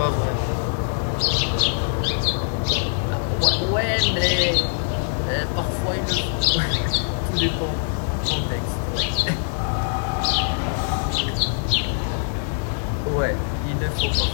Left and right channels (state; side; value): silent; right; digital silence